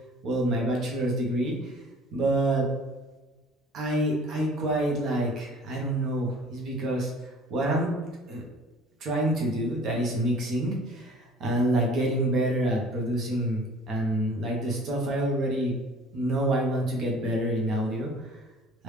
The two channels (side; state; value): both; normal; correlation 0.49